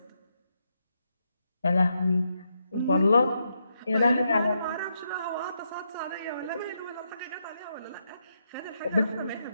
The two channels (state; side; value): inverted; both; correlation -0.81